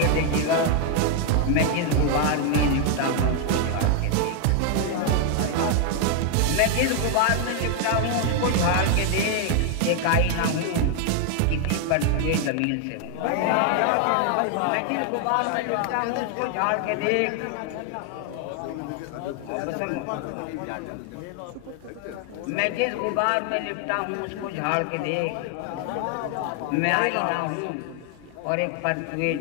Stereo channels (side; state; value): both; different; correlation 0.00